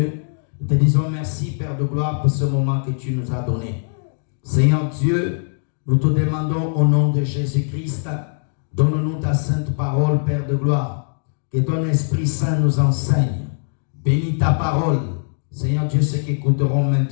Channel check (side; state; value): right; silent; digital silence